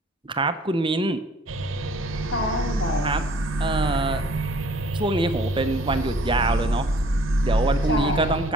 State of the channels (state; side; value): normal; both; correlation 0.55